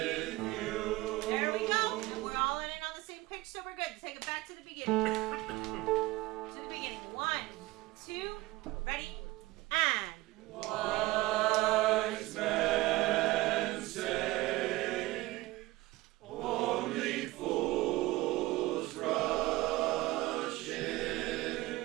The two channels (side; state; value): left; quieter; 19.5 dB